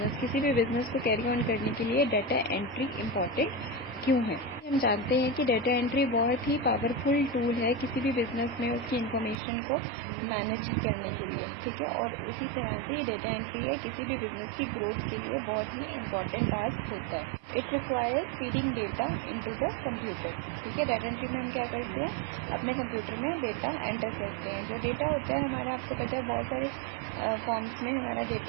किसी भी बिजनेस को कैरी ऑन करने के लिए डाटा एंट्री इम्पॉर्टेंट क्यों है। हम जानते हैं कि डाटा एंट्री बहुत ही पावरफुल टूल है किसी भी बिजनेस में उसकी इन्फॉर्मेशन को मैनेज करने के लिए, ठीक है। और उसी तरह से ये डाटा एंट्री है किसी भी बिजनेस की ग्रोथ के लिए बहुत ही इम्पॉर्टेंट टास्क होता है। It requires feeding data into the computer, ठीक है। डाटा एंट्री में हम क्या करते हैं, अपने कंप्यूटर में डेटा एंटर करते हैं। जो डेटा होता है हमारा, आपको पता है बहुत सारे फॉर्म्स में हमारा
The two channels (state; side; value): drops out; left; at 9.4 s